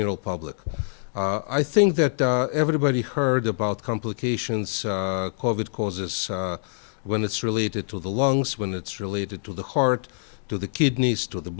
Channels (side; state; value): right; silent; digital silence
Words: public. I think that everybody heard about complications COVID causes when it's related to the lungs, when it's related to the heart, to the kidneys, to the